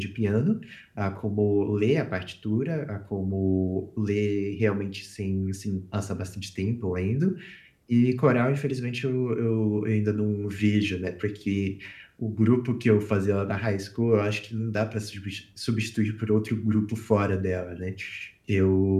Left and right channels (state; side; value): identical; both; correlation 1.00